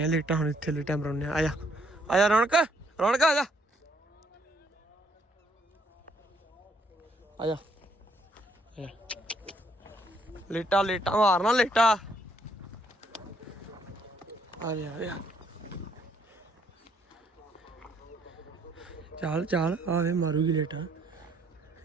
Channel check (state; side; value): normal; both; correlation 0.69